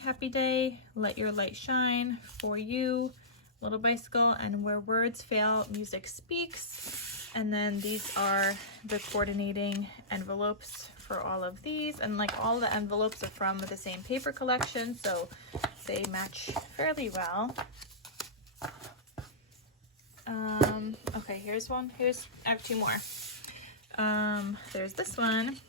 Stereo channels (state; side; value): normal; both; correlation -0.18